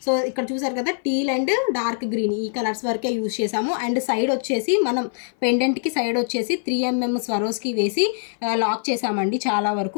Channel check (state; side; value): silent; right; 57 dB below the other